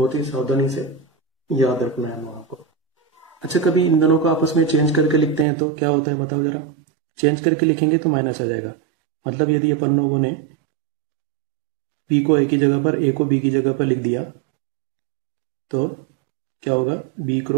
ही सावधानी से याद रखना है वहां को। अच्छा, कभी इन दोनों को आपस में चेंज करके लिखते हैं तो क्या होता है बताओ जरा। चेंज करके लिखेंगे तो माइनस आ जाएगा, मतलब यदि अपन लोगों ने P को A की जगह पर, A को B की जगह पर लिख दिया तो क्या होगा, B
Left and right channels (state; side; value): drops out; left; at 5.5 s